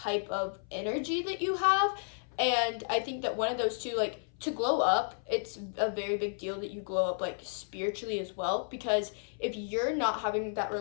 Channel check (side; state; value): right; silent; 56 dB below the other